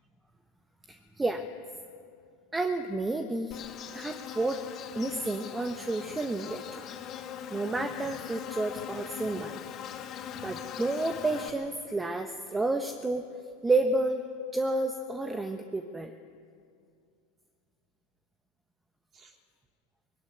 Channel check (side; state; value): both; normal; correlation 0.76